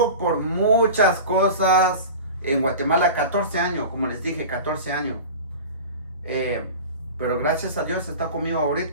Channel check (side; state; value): both; inverted; correlation -0.33